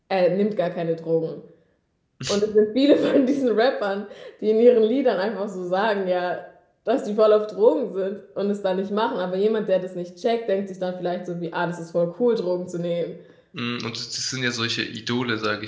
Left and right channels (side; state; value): both; identical; correlation 1.00